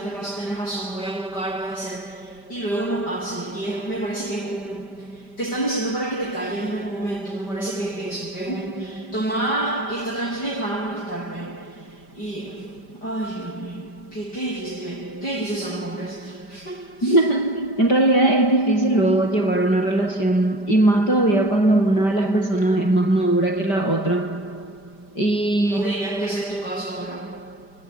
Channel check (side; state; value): right; late; 5.1 ms